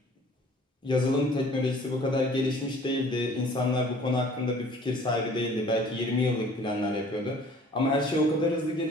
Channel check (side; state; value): both; normal; correlation 0.52